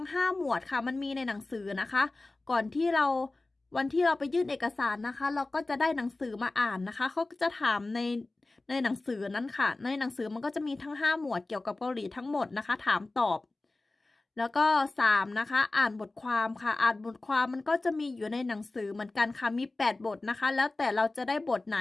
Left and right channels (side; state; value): right; quieter; 3.1 dB